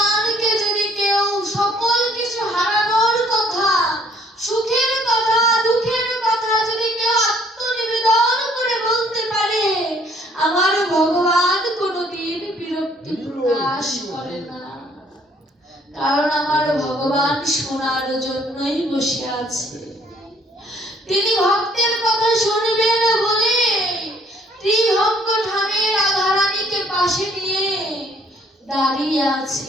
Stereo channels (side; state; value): both; normal; correlation 0.61